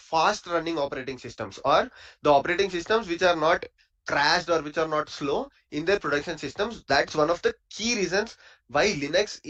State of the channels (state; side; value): identical; both; correlation 1.00